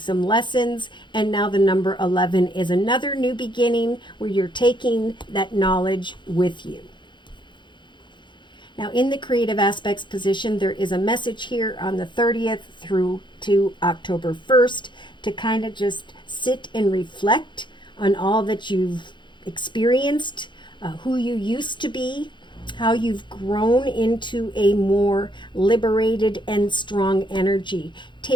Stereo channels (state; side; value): late; right; 0.23 ms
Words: lessons. And now the number 11 is another new beginning where you're taking that knowledge with you. Now in the creative aspects position, there is a message here on the 30th through to October 1st to kind of just sit and reflect on all that you've experienced, who you used to be, how you've grown into a more liberated and strong energy.